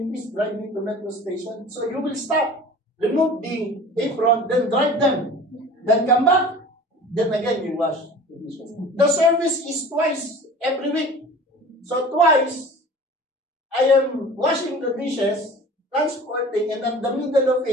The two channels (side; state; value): both; normal; correlation 0.42